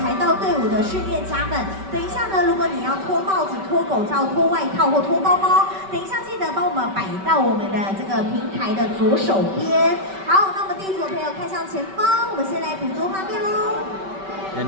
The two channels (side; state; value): left; late; 5.2 ms